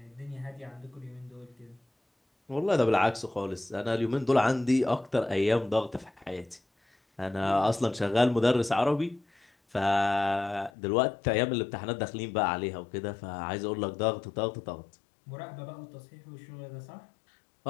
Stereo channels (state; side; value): drops out; right; at 10.7 s